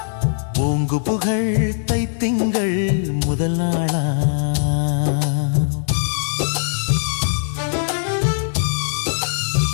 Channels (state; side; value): silent; right; digital silence